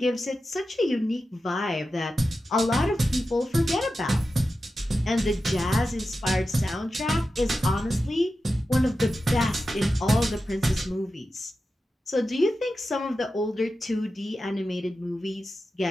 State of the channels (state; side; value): normal; both; correlation 0.92